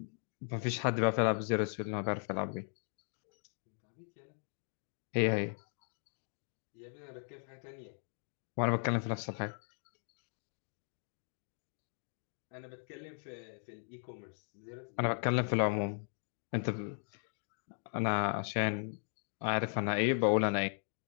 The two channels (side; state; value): right; silent; 53 dB below the other